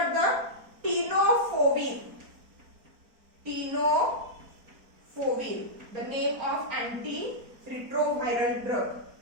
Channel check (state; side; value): late; left; 4.4 ms